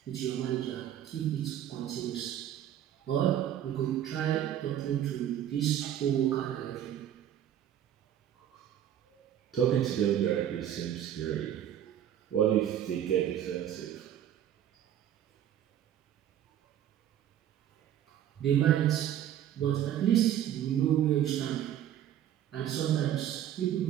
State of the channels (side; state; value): left; quieter; 10.9 dB